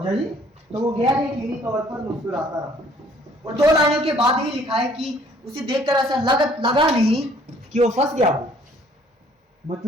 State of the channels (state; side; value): normal; both; correlation 0.59